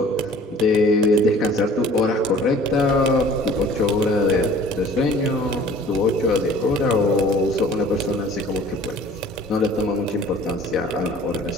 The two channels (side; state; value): both; normal; correlation 0.50